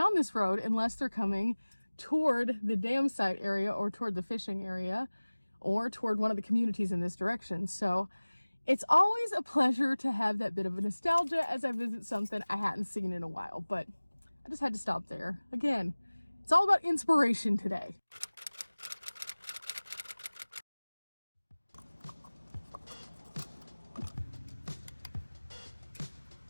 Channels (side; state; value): both; inverted; correlation -1.00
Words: this road unless they're coming toward the dam site area or toward the fishing area or toward one of the communities in this direction. So it's always a pleasure to have that bit of a nostalgia as I visit something I hadn't seen in a while, but I just had to stop there. Again, it's all about inspiration today.